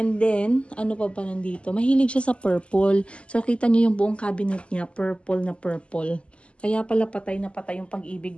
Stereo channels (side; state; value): right; late; 0.055 ms